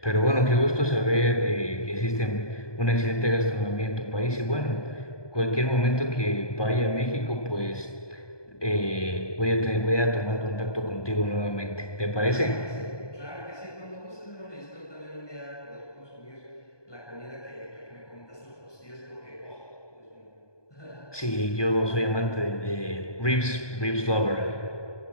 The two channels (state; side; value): late; right; 1.2 ms